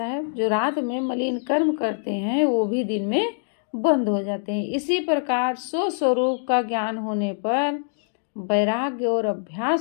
जो रात में मलिन कर्म करते हैं वो भी दिन में बंद हो जाते हैं। इसी प्रकार स्वस्वरूप का ज्ञान होने पर वैराग्य और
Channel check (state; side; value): silent; right; digital silence